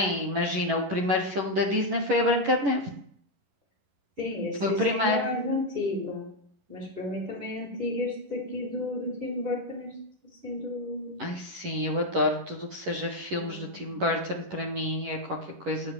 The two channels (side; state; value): left; late; 11 ms